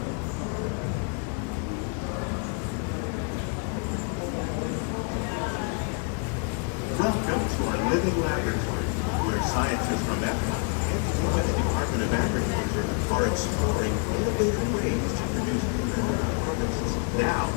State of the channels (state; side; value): quieter; right; 38.4 dB